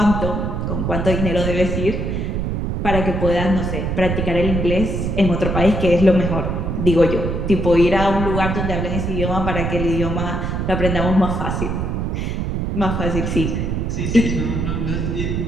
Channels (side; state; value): right; noise; rumble, 1 dB below the sound